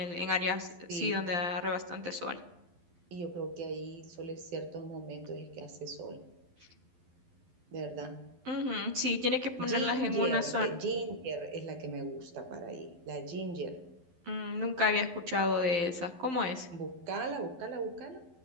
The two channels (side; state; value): left; late; 12 ms